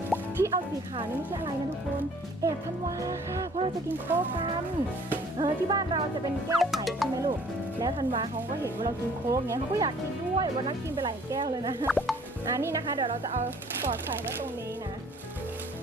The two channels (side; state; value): both; normal; correlation 0.55